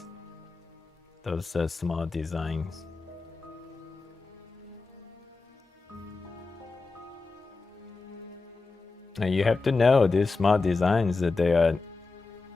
those small designs. And you have to know these small designs that they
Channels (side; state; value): right; quieter; 3.9 dB